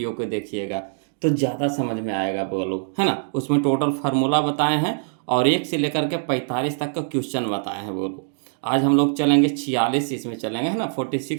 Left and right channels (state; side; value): silent; left; digital silence